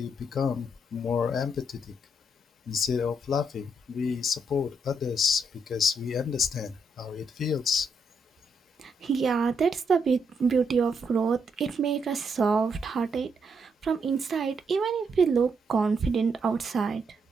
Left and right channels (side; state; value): both; normal; correlation 0.77